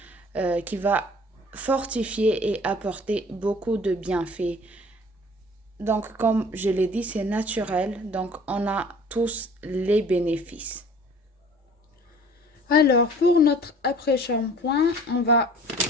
qui va fortifier et apporter beaucoup de bienfaits. Donc, comme je l'ai dit, c'est naturel. Donc, on a tous les bénéfices. Alors, pour notre après-shampoing, on va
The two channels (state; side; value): normal; both; correlation 0.49